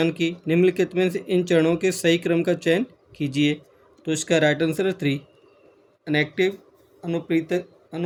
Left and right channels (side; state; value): both; identical; correlation 1.00